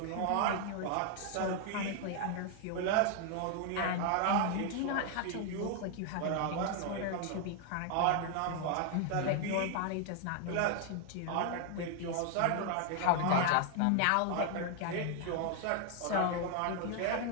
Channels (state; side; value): different; both; correlation 0.00